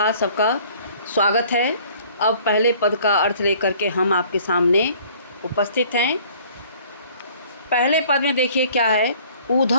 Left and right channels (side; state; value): both; inverted; correlation -0.54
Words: सबका स्वागत है। अब पहले पद का अर्थ लेकर के हम आपके सामने उपस्थित हैं। पहले पद में देखिए क्या है,